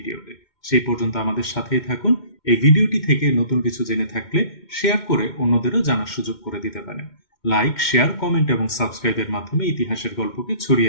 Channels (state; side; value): late; right; 2.1 ms